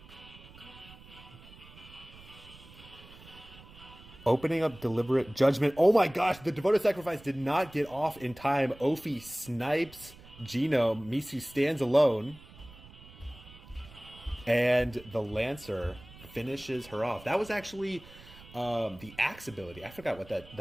Opening up Deliberate Judgment. Oh my gosh, the Devoted Sacrifice did not get off in time. Opie snipes Genome. Misu stands alone. And the Lancer finishes her off. That was actually the Axe ability. I forgot what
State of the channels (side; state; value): right; noise; rumble, 20 dB below the sound